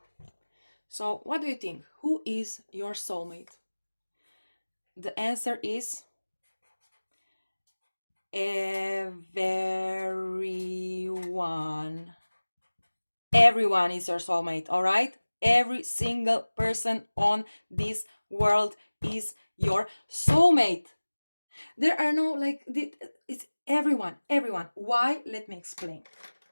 So what do you think? Who is your soulmate? The answer is everyone. Everyone is your soulmate, all right? Every single person on this world is your soulmate. There are no like it's everyone. Why? Let me explain.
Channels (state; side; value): inverted; both; correlation -1.00